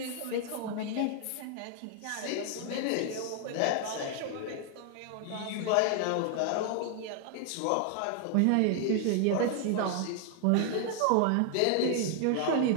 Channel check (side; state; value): both; different; correlation 0.00